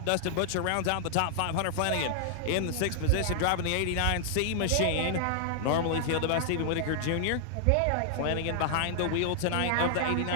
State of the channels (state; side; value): different; both; correlation -0.01